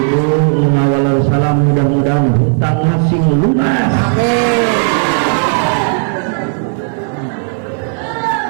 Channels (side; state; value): left; silent; 68 dB below the other